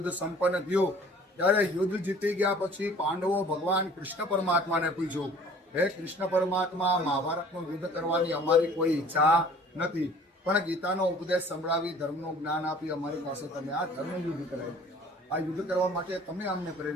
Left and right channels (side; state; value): both; normal; correlation 0.50